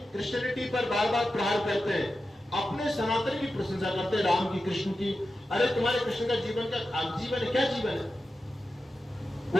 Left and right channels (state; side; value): normal; both; correlation 0.92